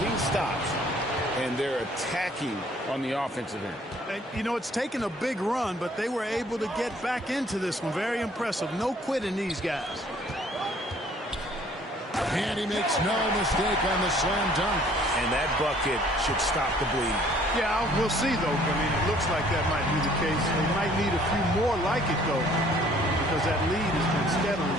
stops, and they're attacking on the offensive end. And, you know, it's taken a big run, but they were able to get back into this one. Very impressive. No quitting these guys. And he makes no mistake on the slam dunk. And that bucket should stop the bleed. Yeah, we'll see, though. I mean, it looks like that might be the case. They might need a few more like it, though, because that lead has been steadily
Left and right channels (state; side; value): normal; both; correlation 0.58